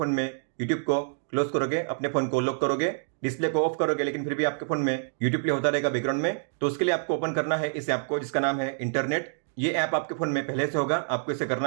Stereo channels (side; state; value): left; silent; digital silence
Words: में यूट्यूब को क्लोज करोगे, अपने फोन को लॉक करोगे, डिस्प्ले को ऑफ करोगे लेकिन फिर भी आपके फोन में यूट्यूब प्ले होता रहेगा बैकग्राउंड में, तो उसके लिए आपको ओपन करना है इस ऐप को जिसका नाम है इंटरनेट। ये ऐप आपके फोन में पहले से होगा, आपको इसे